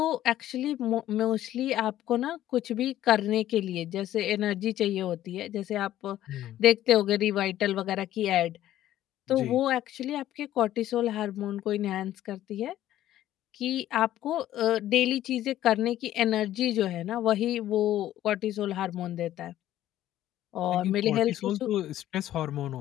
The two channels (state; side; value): quieter; right; 13.1 dB